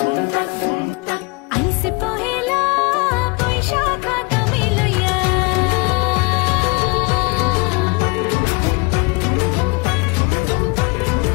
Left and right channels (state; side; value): quieter; right; 28.7 dB